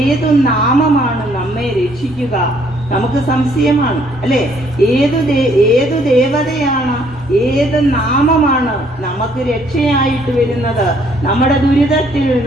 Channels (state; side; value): normal; both; correlation 0.65